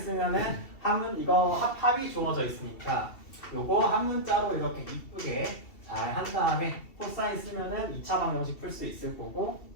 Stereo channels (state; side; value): late; right; 2.7 ms